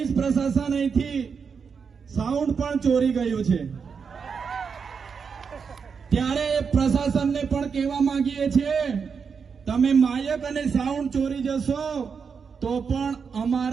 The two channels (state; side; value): quieter; left; 6.0 dB